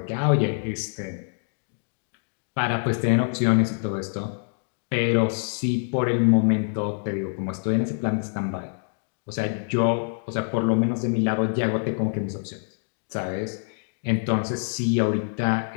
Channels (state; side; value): silent; right; 56 dB below the other